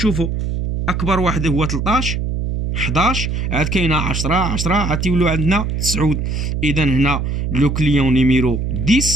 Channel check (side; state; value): right; noise; hum, 1 dB below the sound